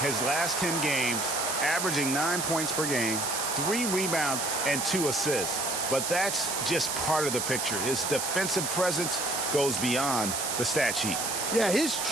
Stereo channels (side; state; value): right; noise; hiss, 1 dB below the sound